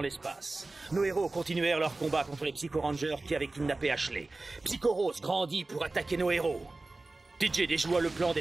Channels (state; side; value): quieter; left; 3.2 dB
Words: l'espace, nos héros continuèrent leur combat contre les Psycho Rangers qui avaient kidnappé Ashley. Psycho Rose grandit pour attaquer nos héros. DJ déjoua le plan